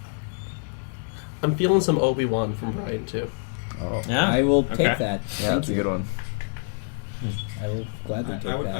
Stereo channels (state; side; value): silent; right; 61 dB below the other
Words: I'm feeling some Obi-Wan from Brian, too. Oh. Yeah. I will take Okay. that. Yeah, Thank that's a you. good one. I will gladly take I would